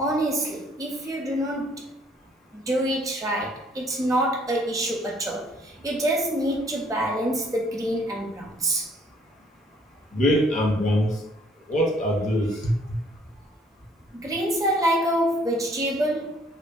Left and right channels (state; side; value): normal; both; correlation 0.62